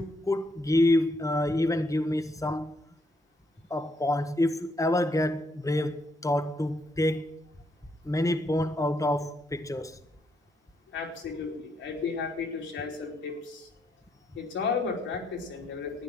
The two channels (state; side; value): normal; both; correlation 0.75